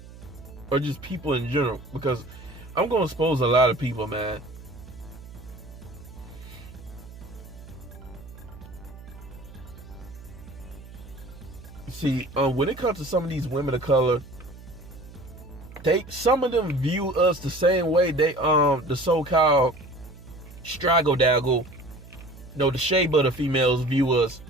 or just people in general. Because I'm gonna expose a lot of people, man. See, when it comes to some of these women of color, some of them view us the same way the so-called straggle daggle, the shea butter females view us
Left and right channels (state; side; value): noise; right; hum, 17 dB below the sound